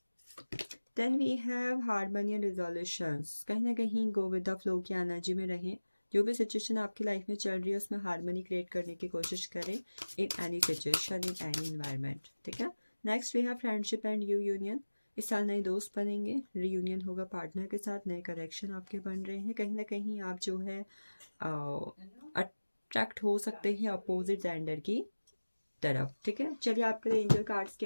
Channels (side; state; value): both; inverted; correlation -1.00